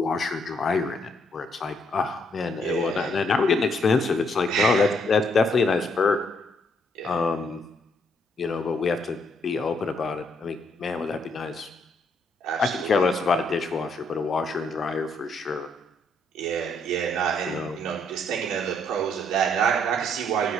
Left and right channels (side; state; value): both; normal; correlation 0.71